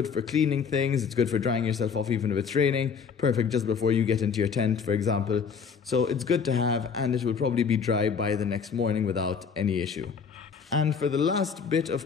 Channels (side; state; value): right; quieter; 6.2 dB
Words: for cleaning things. It's good for drying yourself off even if it's raining. Perfect just before you get into your tent, for example. So it's good to have, and it will probably be dry by the next morning without any issue. And for the last bit